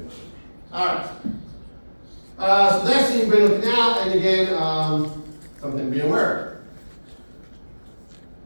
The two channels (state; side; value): inverted; both; correlation -1.00